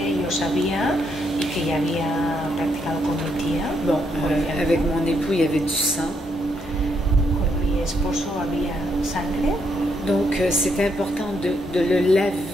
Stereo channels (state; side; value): normal; both; correlation 0.76